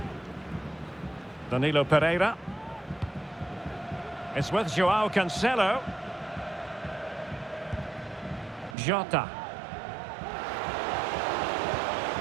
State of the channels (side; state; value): left; drops out; at 8.8 s